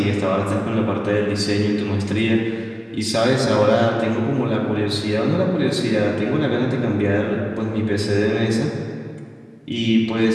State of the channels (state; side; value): identical; both; correlation 1.00